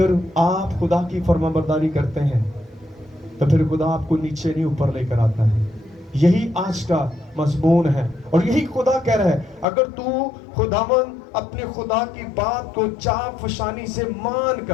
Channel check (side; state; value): right; drops out; at 9.7 s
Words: آپ خدا کی فرما برداری کرتے ہیں تو پھر خدا آپ کو نیچے نہیں اوپر لے کر آتا ہے. یہی آج کا مضمون ہے، اور یہی خدا کہہ رہا ہے اگر تو خداوند اپنے خدا کی بات کو چاپ فشانی سے مان